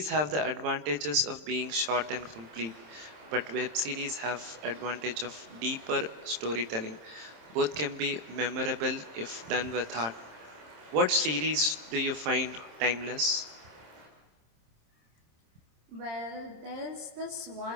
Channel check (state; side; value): late; left; 27 ms